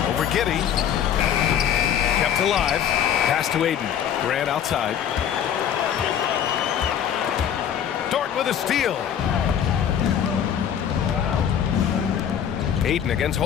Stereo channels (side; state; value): right; quieter; 9.1 dB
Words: Over Giddey. Kept alive. Pass to Ayton. Grant outside. Dort with a steal. Ayton against